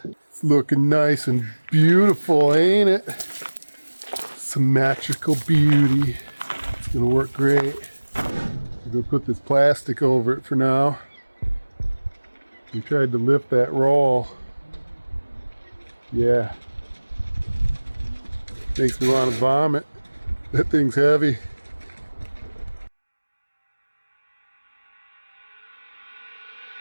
It's looking nice and beautiful, ain't it? Symmetrical beauty. It's gonna work great. I'm gonna put this plastic over it for now. We tried to lift that roll. Yeah. Makes me want to vomit. That thing's heavy.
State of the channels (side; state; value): both; inverted; correlation -1.00